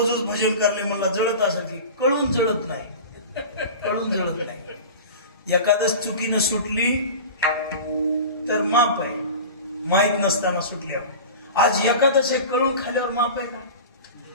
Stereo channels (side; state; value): both; inverted; correlation -0.34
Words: भजन करले म्हणला जळत असं की कळून जळत नाही. कळून जळत नाही. एखादच चुकीनं सुटली तर माप आहे, माहित नसताना सुटल्यावर. आज एखादच हे कळून खाल्यावर माप आहे का?